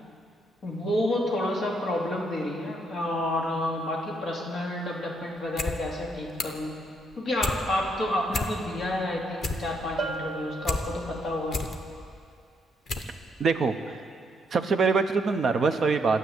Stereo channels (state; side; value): normal; both; correlation 0.74